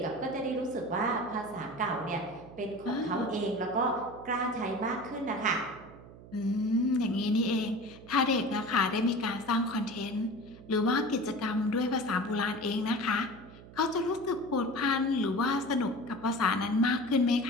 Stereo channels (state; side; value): noise; right; hum, 18 dB below the sound